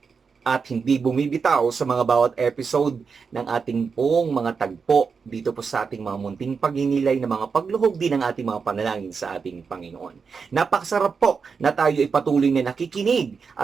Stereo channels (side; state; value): left; quieter; 5.5 dB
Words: at hindi bumibitaw sa mga bawat episode ng ating pong mga tagpo dito po sa ating mga munting pagninilay na mga pagluhog din ng ating mga panalangin sa ating Panginoon. Napakasarap po na tayo ay patuloy na nakikinig